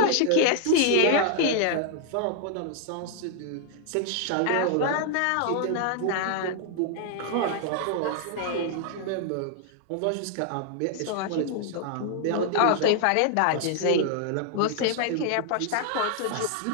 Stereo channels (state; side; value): different; both; correlation 0.00